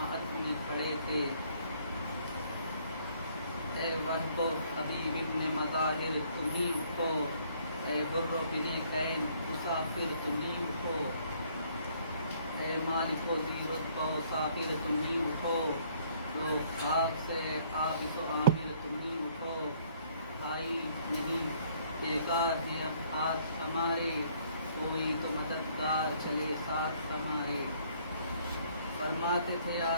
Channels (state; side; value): inverted; both; correlation -0.62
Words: میں کھڑے تھے، اے وحد و حبیب ابن مظاہر تمہیں اٹھو، اے بر و بن کین مسافر تمہیں اٹھو، اے مالک و ذی رتبہ و ساغر تمہیں اٹھو، لوگ خاک سے حافظ و عامر تمہیں اٹھو، بھائی نہیں بیکار ہیں اب ہاتھ ہمارے، کوئی تو مددگار چلے ساتھ ہمارے، فرماتے تھے